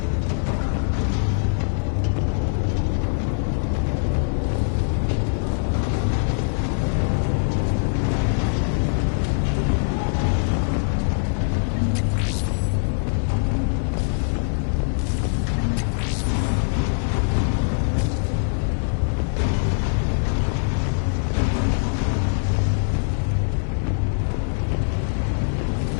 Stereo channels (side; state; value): right; silent; 64 dB below the other